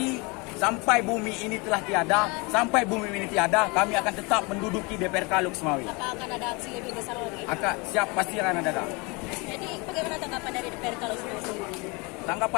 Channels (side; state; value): right; quieter; 28.2 dB